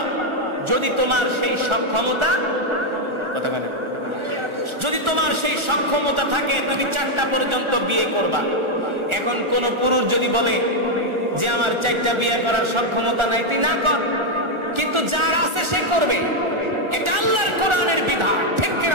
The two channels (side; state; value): left; late; 1.4 ms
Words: যদি তোমার সেই সক্ষমতা, কথা বলেন, যদি তোমার সেই সক্ষমতা থাকে তুমি 4টা পর্যন্ত বিয়ে করবা। এখন কোন পুরুষ যদি বলে যে আমার 4টা বিয়ে করার সক্ষমতা নাই, তুই না কর, কিন্তু যার আছে সে করবে। এটা আল্লাহর কোরআনের বিধান, ঠিক